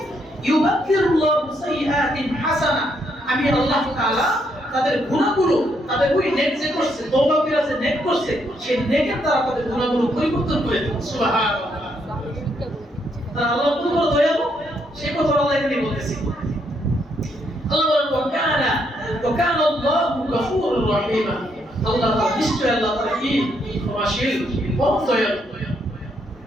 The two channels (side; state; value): both; normal; correlation 0.75